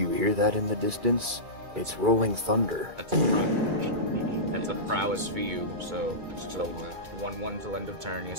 hear that in the distance? It's rolling thunder. That's a prowess for you, so So what? 1/1 till end of turn,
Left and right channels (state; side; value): late; left; 2.4 ms